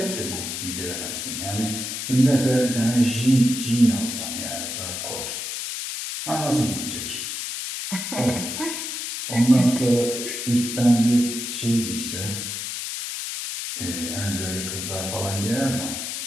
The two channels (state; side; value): noise; left; hiss, 5 dB below the sound